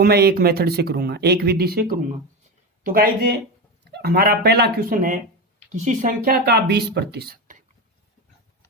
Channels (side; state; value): both; normal; correlation 0.19